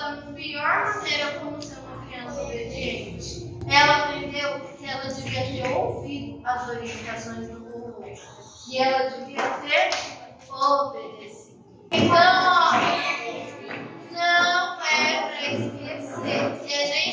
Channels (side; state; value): both; identical; correlation 1.00